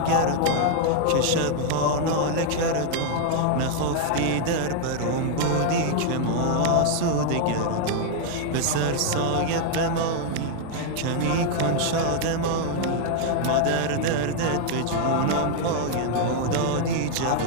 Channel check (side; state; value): both; different; correlation 0.00